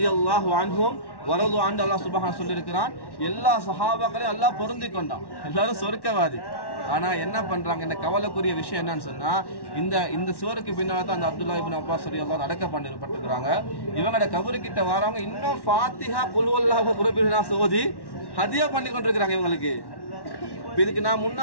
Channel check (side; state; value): right; late; 1.1 ms